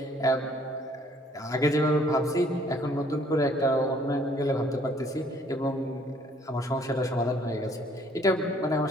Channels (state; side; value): normal; both; correlation 0.61